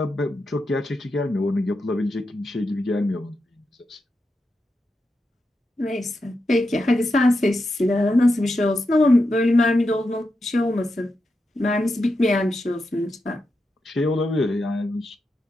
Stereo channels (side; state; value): both; normal; correlation 0.87